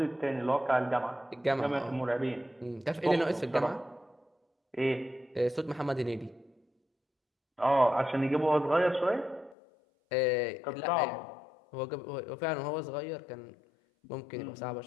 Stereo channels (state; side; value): drops out; right; at 9.6 s